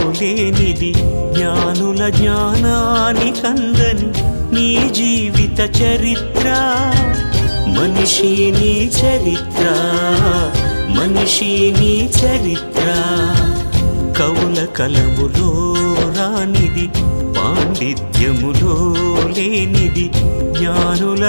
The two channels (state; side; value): inverted; both; correlation -1.00